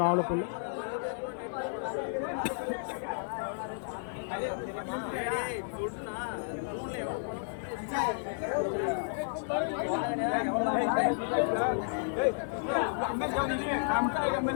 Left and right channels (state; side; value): silent; right; 56 dB below the other